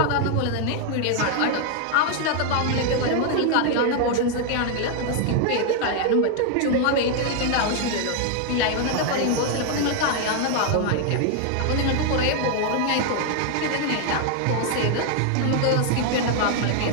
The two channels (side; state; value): both; different; correlation 0.00